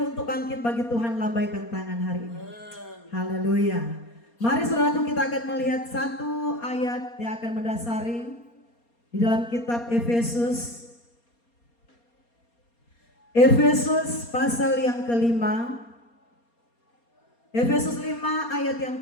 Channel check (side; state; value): right; late; 4.3 ms